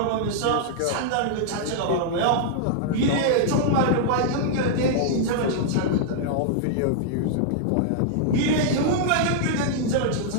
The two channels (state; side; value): different; both; correlation -0.01